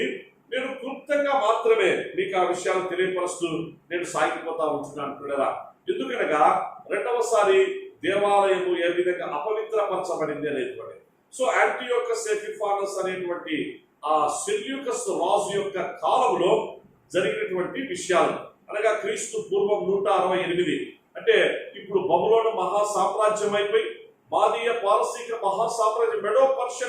నేను క్లుప్తంగా మాత్రమే మీకు ఆ విషయాలు తెలియపరుస్తూ నేను సాగిపోతా ఉంటున్నాను పిల్లరా. ఎందుకనగా రెండవసారి దేవాలయము ఏ విధంగా అపవిత్రపరచబడింది అనేటువంటి. సో యాంటియోకస్ ఎపిఫానస్ అనేటువంటి ఆ సెల్యూకస్ రాజు యొక్క కాలంలో జరిగినటువంటి విషయాలు, అనగా క్రీస్తు పూర్వం 168, అంటే ఇప్పుడు బబులోను మహాసామ్రాజ్యం అయిపోయి మాదీయ పారసీక మహాసామ్రాజ్యం మెడో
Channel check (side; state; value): both; identical; correlation 1.00